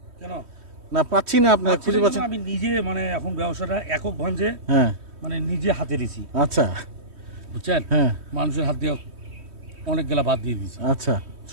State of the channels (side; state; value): left; late; 3.1 ms